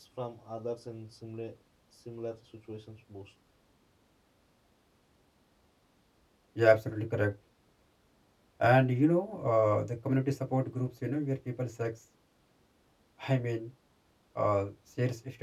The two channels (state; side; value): identical; both; correlation 1.00